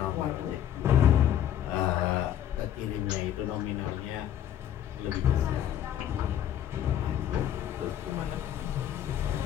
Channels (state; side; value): quieter; right; 10.7 dB